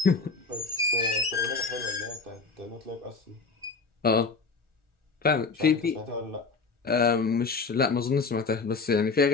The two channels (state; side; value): quieter; right; 4.4 dB